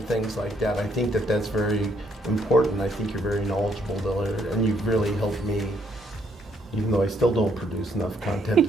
things like that. I think that's very important. I think you're very knowledgeable there, and you've really helped me, even though I still don't produce enough content.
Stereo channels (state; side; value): normal; both; correlation 0.71